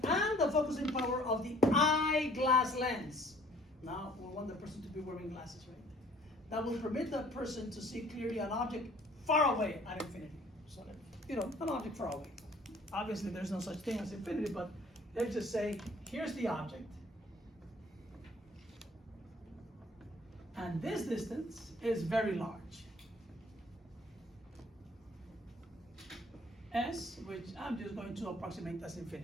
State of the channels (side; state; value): both; normal; correlation 0.56